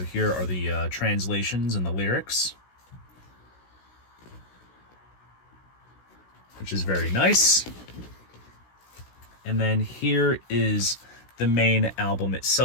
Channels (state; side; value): late; right; 16 ms